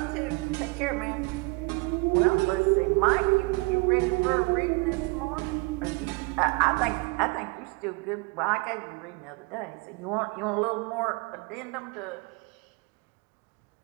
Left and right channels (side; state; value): left; quieter; 28.3 dB